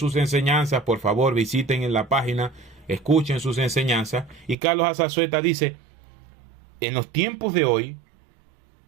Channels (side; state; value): left; drops out; at 4.5 s